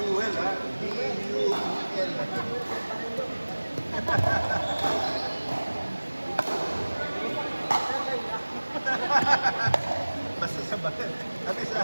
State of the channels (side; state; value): both; inverted; correlation -1.00